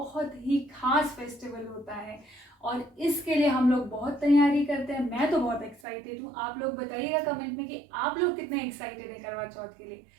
ही खास फेस्टिवल होता है और इसके लिए हम लोग बहुत तैयारी करते हैं। मैं तो बहुत एक्साइटेड हूँ। आप लोग बताइएगा कमेंट में कि आप लोग कितने एक्साइटेड है करवा चौथ के लिए।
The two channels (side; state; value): left; drops out; at 5.8 s